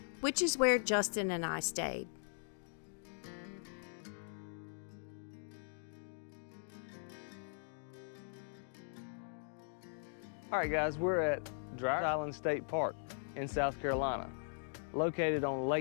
which is where Justin and I stayed. Alright guys, we're at Dreher Island State Park in South Carolina, located on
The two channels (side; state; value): right; silent; digital silence